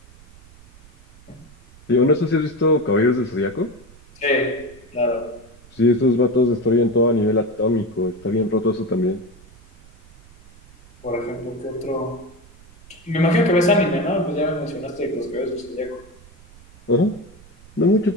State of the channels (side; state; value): right; noise; rumble, 24 dB below the sound